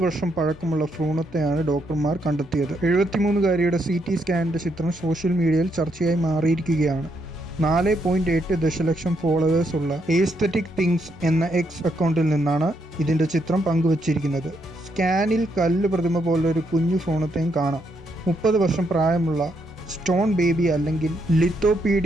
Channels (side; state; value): both; normal; correlation 0.77